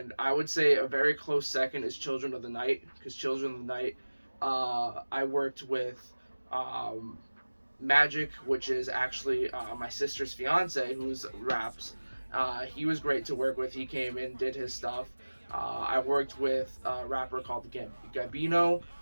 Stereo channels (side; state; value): both; inverted; correlation -1.00